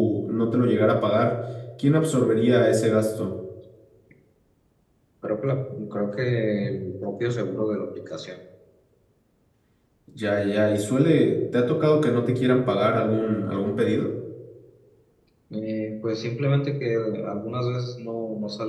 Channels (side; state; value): both; identical; correlation 1.00